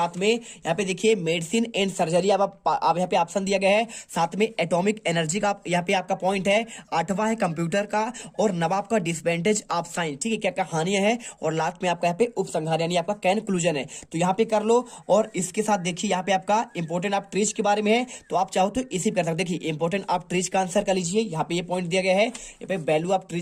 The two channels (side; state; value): both; identical; correlation 1.00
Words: में यहाँ पे देखिए मेडिसिन एंड सर्जरी अब यहाँ पे ऑप्शन दिया गया है, साथ में एटॉमिक एनर्जी का यहाँ पे आपका पॉइंट है, 8वां है कंप्यूटर का और नवाब का डिसएडवांटेज ऑफ साइंस, ठीक है, क्या क्या हानियां है, और लास्ट में आपका यहाँ पे उपसंहार यानी आपका कंक्लूजन है। तो यहाँ पे कर लो। और इसके साथ देखिए यहाँ पे आपका इंपॉर्टेंट ऑफ ट्रीज के बारे में है, तो आप चाहो तो इसी कर सकते। देखिए इंपॉर्टेंट ऑफ ट्रीज का आंसर कर लीजिए, यहाँ पे ये पॉइंट दिया गया है। यहाँ पे वैल्यू ऑफ